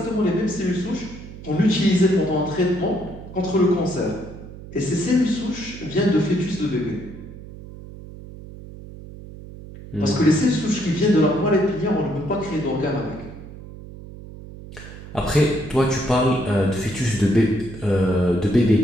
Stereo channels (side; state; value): right; noise; hum, 15 dB below the sound